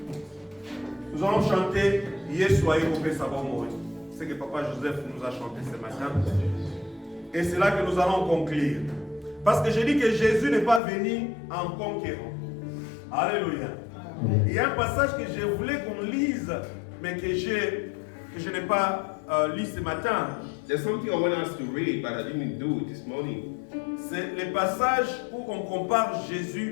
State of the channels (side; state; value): right; drops out; at 10.8 s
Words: Nous allons chanter Yesoye Ope Sabomori. C'est ce que Papa Joseph nous a chanté ce matin. Et c'est là que nous allons conclure. Parce que je dis que Jésus n'est pas venu en conquérant. Alléluia. Il y a un passage que je voulais qu'on lise, mais que je n'ai pas lu ce matin. There's something I want us to read, but I didn't do it this morning. C'est le passage où on compare